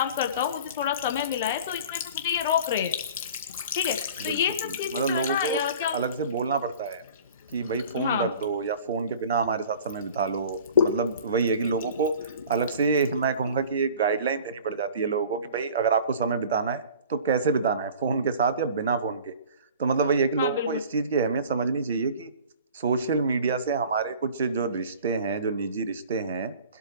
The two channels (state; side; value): inverted; both; correlation -0.44